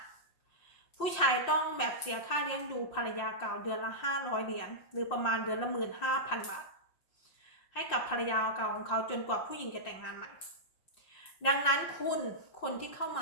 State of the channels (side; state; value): right; late; 5.7 ms